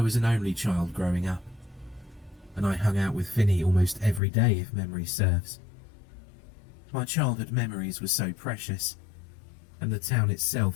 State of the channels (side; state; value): right; drops out; at 4.2 s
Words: was an only child growing up, and I hung out with Finney almost every day if memory serves. My childhood memories were so precious, and the town